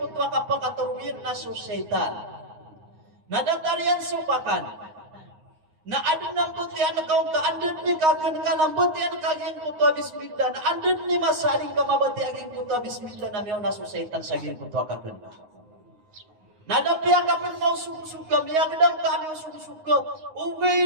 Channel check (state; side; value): late; left; 9.6 ms